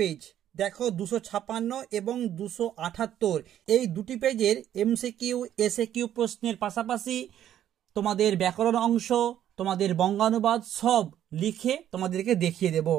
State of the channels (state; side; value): quieter; left; 11.1 dB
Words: দেখো 256 এবং 278 এই দুটি পেজের এমসিকিউ এসএকিউ প্রশ্নের পাশাপাশি তোমাদের ব্যাকরণ অংশ, তোমাদের বঙ্গানুবাদ সব লিখে তোমাদেরকে দেখিয়ে দেব।